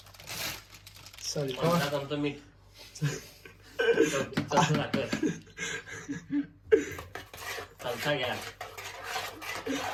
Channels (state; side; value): identical; both; correlation 1.00